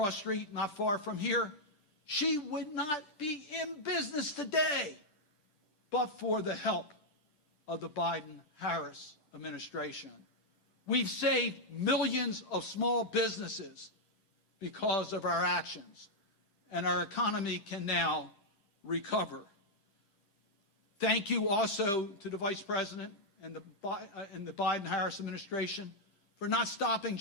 Street, not far from here. She would not be in business today but for the help of the Biden-Harris administration. We've saved millions of small businesses because of our actions, and our economy can now recover. Thank you also to the Vice President and the Biden-Harris administration for not stopping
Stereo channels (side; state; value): right; late; 9.9 ms